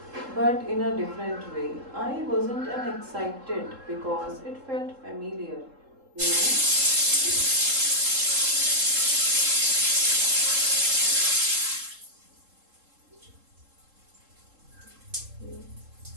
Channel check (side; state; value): left; late; 3.7 ms